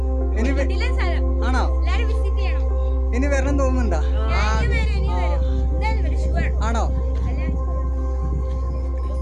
ഇനി ആണോ? ഇനി വരണം തോന്നുന്നുണ്ടാ? ആണോ?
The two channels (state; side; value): identical; both; correlation 1.00